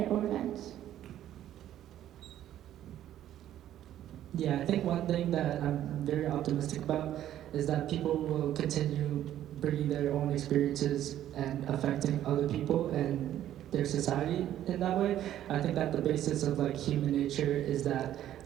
events. Yeah, I think one thing that I'm very optimistic about is that people will continue bringing their own experiences and affecting other people and their society in that way. I think that the basis of like human nature is that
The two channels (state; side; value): quieter; left; 11.9 dB